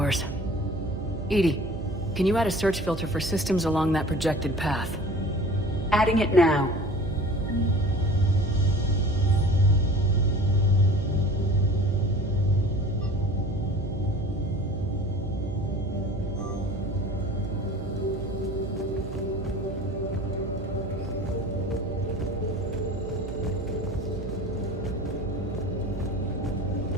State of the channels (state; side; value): noise; right; hum, 8 dB below the sound